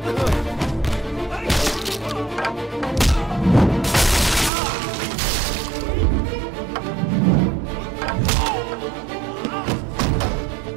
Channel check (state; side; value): drops out; left; at 4.5 s